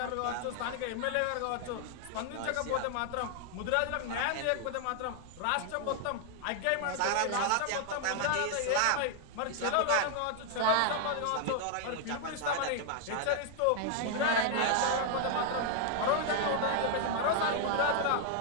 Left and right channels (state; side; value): different; both; correlation 0.00